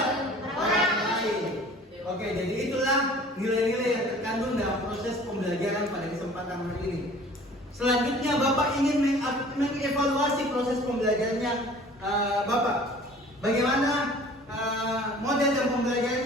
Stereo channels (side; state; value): both; normal; correlation 0.48